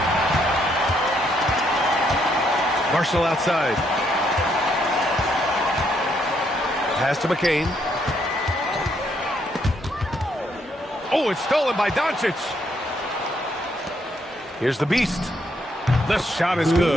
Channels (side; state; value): both; normal; correlation 0.73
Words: Marshall outside. Pass to McCain. Oh, it's stolen by Doncic. Here's the beast. The shot is